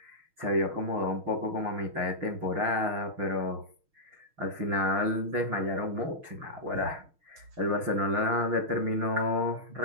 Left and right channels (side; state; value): left; late; 6.4 ms